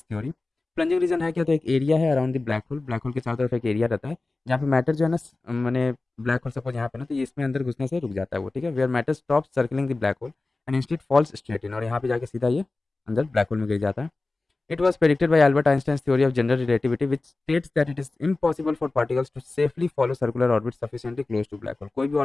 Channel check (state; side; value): quieter; right; 3.3 dB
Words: थ्योरी। प्लंजिंग रीजन है क्या तो एक एरिया है अराउंड द ब्लैक होल के चारों तरफ एक एरिया रहता है जहाँ पे मैटर जो है ना मैंने ब्लैक होल सपोज यहाँ पे ना तो ये इसमें अंदर घुसने से रुक जाता है वो। ठीक है, where matter stop circling the black hole and instead falls straight in, और यहाँ पे जाके सीधा ये अंदर ब्लैक होल में गिर जाता है। It was predicted by Albert Einstein's theory of general relativity which states that it is impossible for particles to safely follow circular orbit sufficiently close to black hole. कोई भी